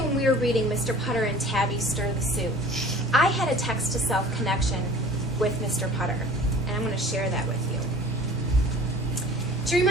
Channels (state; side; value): normal; both; correlation 0.45